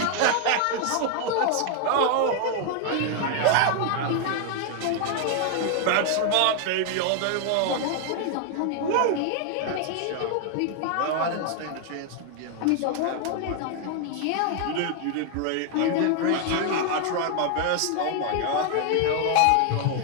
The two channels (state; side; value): different; both; correlation 0.00